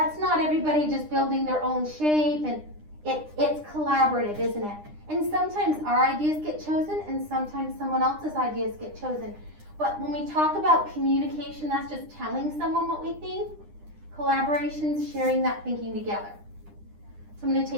not everybody just building their own shape, and it's collaborative, isn't it? And sometimes our ideas get chosen and sometimes someone else's ideas get chosen. But when we talk about communication, that's just telling someone what we think. Collaboration's sharing that thinking together. So I'm going to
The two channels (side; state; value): left; late; 9.9 ms